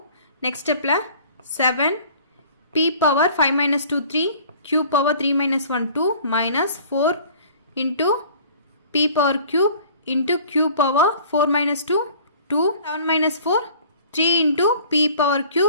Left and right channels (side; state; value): both; inverted; correlation -0.49